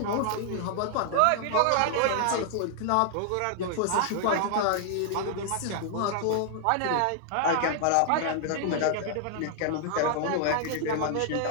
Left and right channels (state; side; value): different; both; correlation 0.00